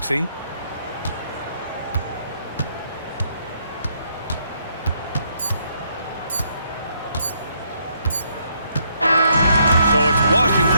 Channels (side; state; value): both; inverted; correlation -0.72